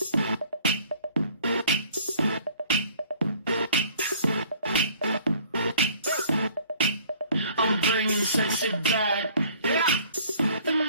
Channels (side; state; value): both; inverted; correlation -0.54